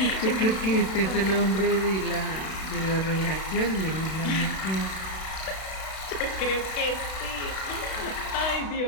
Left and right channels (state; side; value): late; right; 32 ms